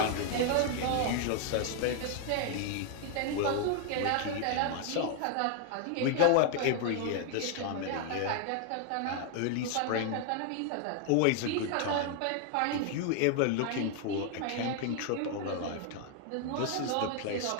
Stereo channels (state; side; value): different; both; correlation 0.00